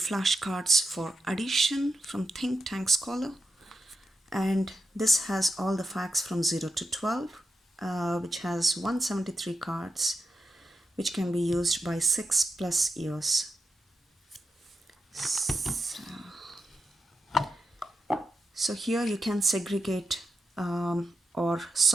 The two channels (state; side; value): normal; both; correlation 0.86